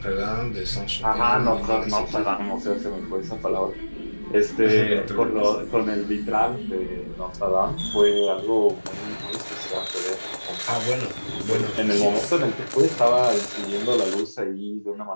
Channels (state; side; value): inverted; both; correlation -1.00